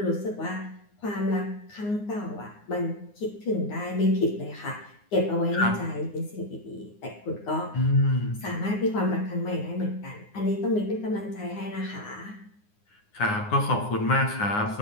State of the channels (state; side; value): late; right; 9.7 ms